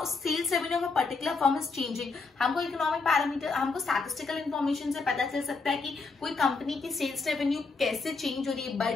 sales revenue of a particular firm is changing. हमको इकोनॉमिक पैरामीटर, हमको स्टैटिस्टिकल इंफॉर्मेशन से पता चल सकता है कि कोई कंपनी की सेल्स रेवेन्यू कैसे चेंज हो रही है,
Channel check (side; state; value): right; quieter; 4.2 dB